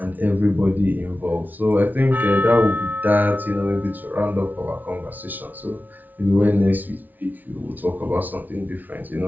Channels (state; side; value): late; left; 0.081 ms